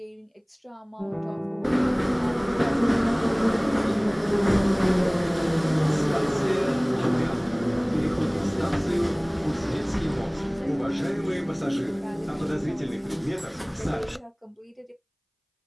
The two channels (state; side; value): identical; both; correlation 1.00